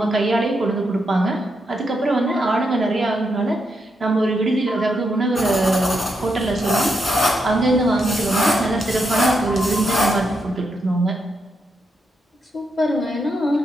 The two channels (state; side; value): normal; both; correlation 0.82